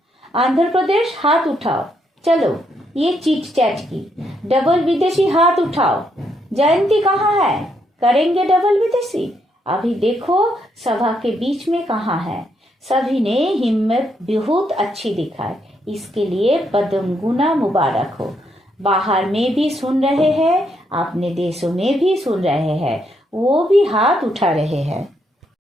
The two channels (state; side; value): normal; both; correlation 0.76